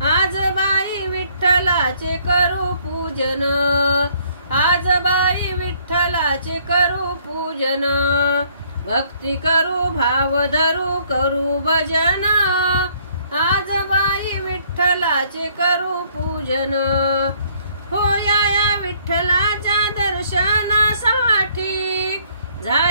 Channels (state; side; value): inverted; both; correlation -0.64